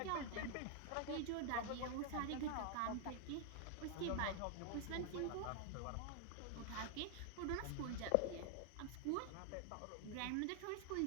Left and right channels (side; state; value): both; different; correlation 0.00